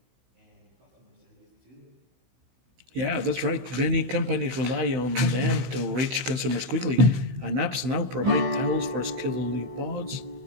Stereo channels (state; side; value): late; left; 16 ms